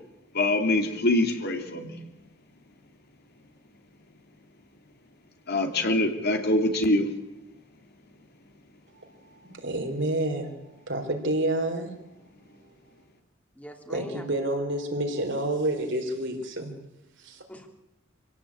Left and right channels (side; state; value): both; normal; correlation 0.20